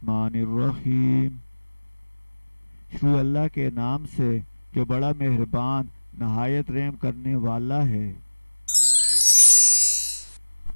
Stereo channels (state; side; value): inverted; both; correlation -1.00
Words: शुरू अल्लाह के नाम से जो बड़ा मेहरबान नहायत रहम करने वाला है।